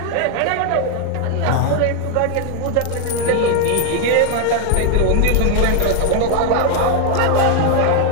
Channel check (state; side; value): different; both; correlation 0.00